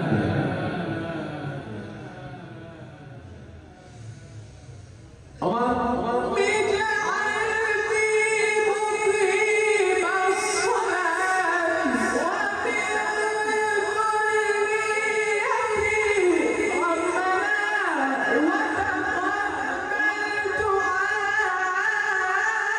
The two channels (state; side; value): identical; both; correlation 1.00